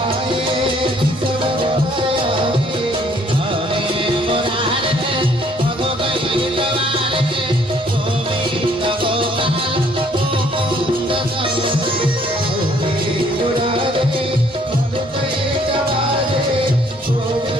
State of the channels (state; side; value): normal; both; correlation 0.63